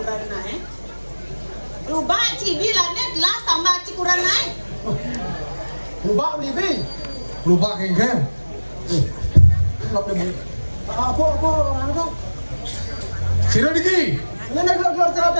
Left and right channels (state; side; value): inverted; both; correlation -1.00